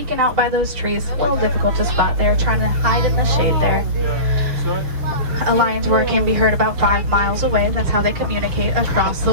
out by those trees. A little difficult to spot. They're trying to hide in the shade there. A lion's roar can be heard about 5 miles away. That's how they communicate across the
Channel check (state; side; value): late; left; 6.7 ms